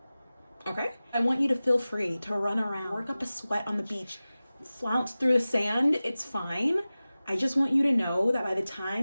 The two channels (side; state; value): both; inverted; correlation -0.97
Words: Okay? I want you to feel free to run around, work up a sweat on the beach, flounce through the sand. It's fine. I just want you to know that by the